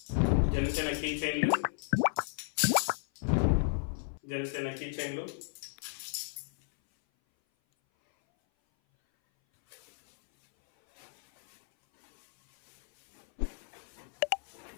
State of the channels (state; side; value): silent; right; 56 dB below the other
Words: Janasena key చైన్లు, Janasena key చైన్లు,